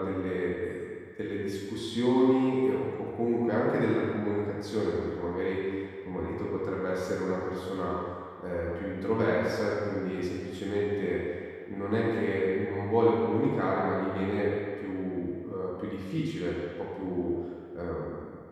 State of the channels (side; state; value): both; identical; correlation 1.00